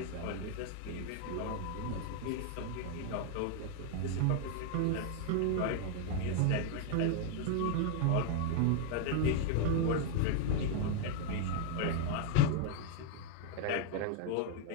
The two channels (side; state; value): both; different; correlation 0.00